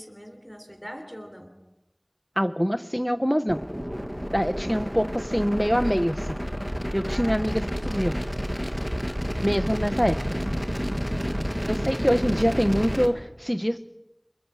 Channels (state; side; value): identical; both; correlation 1.00